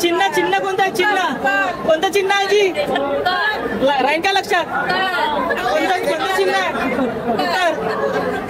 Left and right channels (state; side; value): identical; both; correlation 1.00